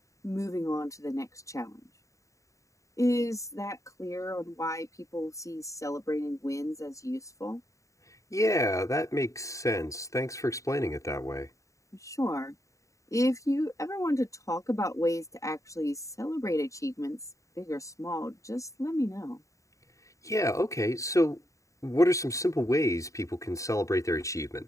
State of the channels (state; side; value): late; right; 0.16 ms